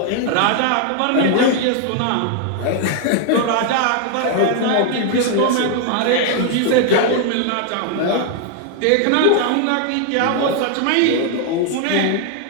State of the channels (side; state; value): both; different; correlation 0.00